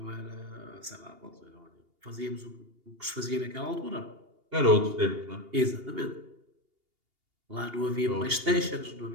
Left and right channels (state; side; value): late; left; 2.8 ms